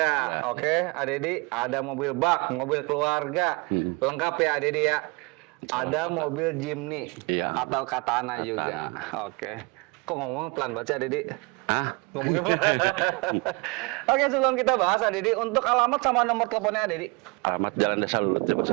Ada. Oke, Dedi. Ada mobil bak, mobil keluarga. Lengkap ya, Dedi ya. Ada mobil Jimny. Iya. Atau Katana juga. Oke. Kok ngomong pelan banget sih, Dedi? Ah, Ngomongnya Oke, sebelum kita bahas, Dedi, untuk alamat sama nomor teleponnya, Dedi. alamat Jalan Desa Lulut ya, Mas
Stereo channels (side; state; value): left; quieter; 28.8 dB